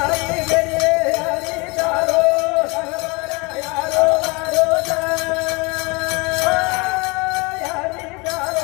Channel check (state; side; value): quieter; right; 27.5 dB